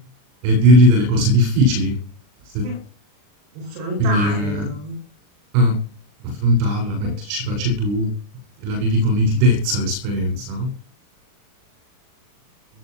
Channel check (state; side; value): late; left; 39 ms